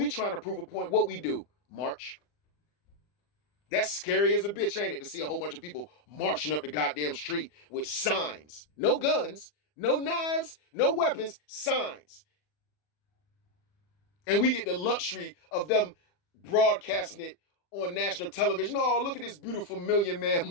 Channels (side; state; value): right; late; 40 ms